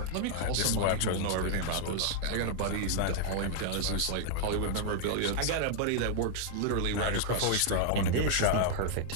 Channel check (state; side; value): different; both; correlation 0.00